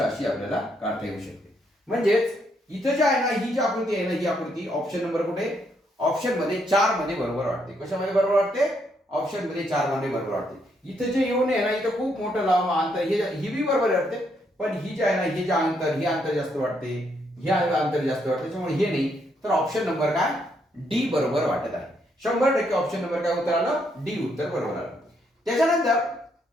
अशी आपल्याला काढता येऊ शकते. म्हणजेच इथं जे आहे ना, ही जी आकृती आहे ना, ही आकृती ऑप्शन नंबर कुठे, ऑप्शन मध्ये 4 मध्ये बरोबर वाटते. कशामध्ये बरोबर वाटते, ऑप्शन मध्ये 4 मध्ये बरोबर वाटते. इथं जे येऊन आहे ना, इथं खूप मोठं लांब अंतर, ही बी बरोबर वाटते, पण ही जे आहे ना, हे जे अंतर, हे अंतर जास्त वाटते, हे अंतर जास्त वाटते, त्याच्यामुळे हे नाही. तर ऑप्शन नंबर काय, डी बरोबर वाटत आहे. 100% ऑप्शन नंबर काय उत्तर आलं, डी उत्तर बरोबर आलं. त्याच्यानंतर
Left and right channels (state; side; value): normal; both; correlation 0.74